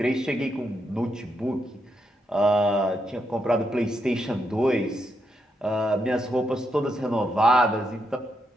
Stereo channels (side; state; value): both; normal; correlation 0.81